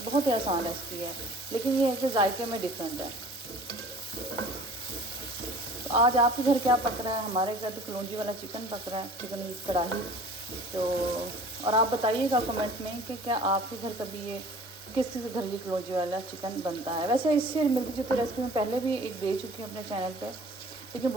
बहुत ही आसान रेसिपी है, लेकिन ये है कि जायके में डिफरेंट है। तो आज आपके घर क्या पक रहा है? हमारे घर तो कलौंजी वाला चिकन पक रहा है, चिकन कढ़ाई। तो और आप बताइएगा कमेंट में कि क्या आपके घर कभी ये किस किस घर ये कलौंजी वाला चिकन बनता है। वैसे इससे मिलती जुलती रेसिपी मैं पहले भी एक दे चुकी हूँ अपने चैनल पे,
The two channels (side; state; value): both; normal; correlation 0.47